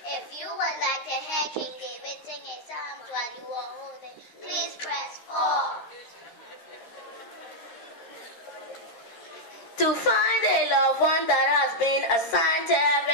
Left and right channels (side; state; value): right; late; 13 ms